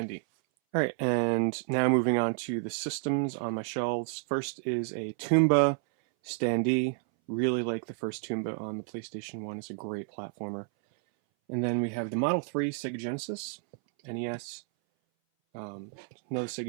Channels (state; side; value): silent; left; 58 dB below the other